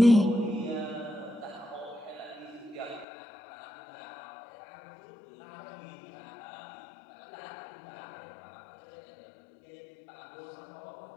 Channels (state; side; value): drops out; right; at 3.1 s